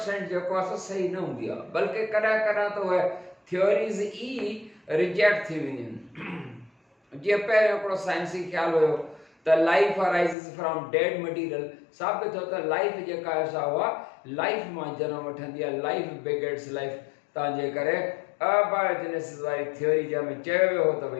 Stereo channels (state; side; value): drops out; right; at 10.4 s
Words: जेको आहे सही न हूंदी आहे, बल्कि कॾहिं त उहे थ्योरीज़ ई रिजेक्ट थी वेंदियूं आहिनि। जीअं पहिरियों हिकिड़ो साइंसी ख़्यालु हुयो त लाइफ अराइज़िस फ्रॉम डेड मटीरियल। साबित थियो त लाइफ जेका आहे सा उहा लाइफ मां जनम वठंदी आहे, लाइफ बिगिन्स लाइफ। तव्हांजे करे अबायोजेनेसिस वारी थ्योरी जंहिंमें चयो वियो हो त